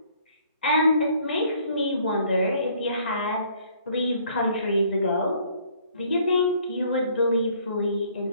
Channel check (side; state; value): both; inverted; correlation -0.61